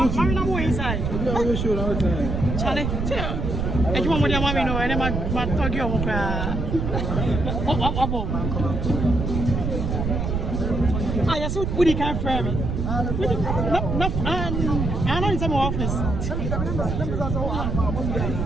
Marina inside. Charlie, I just want to mommy know and my talk you I just would he can't frame me. I know in some office.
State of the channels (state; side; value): noise; right; rumble, 1 dB below the sound